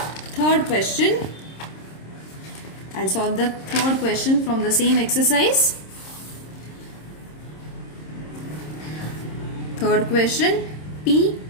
third question. I'll solve the third question from the same exercise. Third question.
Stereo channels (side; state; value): right; late; 26 ms